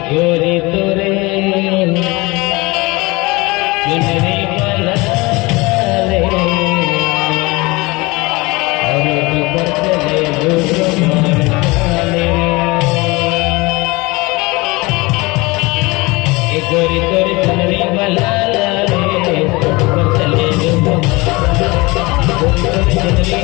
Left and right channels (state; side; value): quieter; right; 23.8 dB